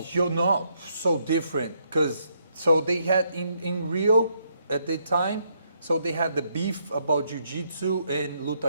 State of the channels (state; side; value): inverted; both; correlation -0.74